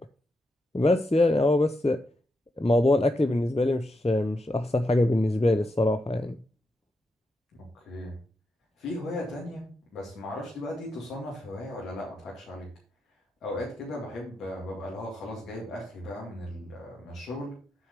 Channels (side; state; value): both; normal; correlation 0.85